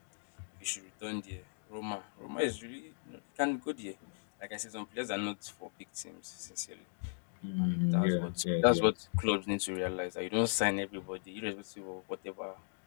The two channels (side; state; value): right; silent; digital silence